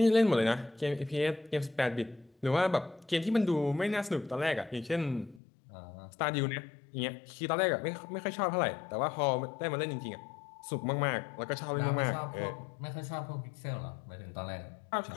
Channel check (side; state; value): right; drops out; at 5.4 s